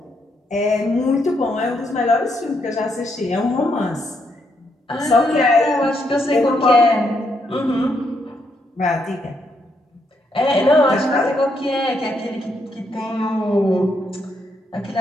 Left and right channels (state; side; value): normal; both; correlation 0.77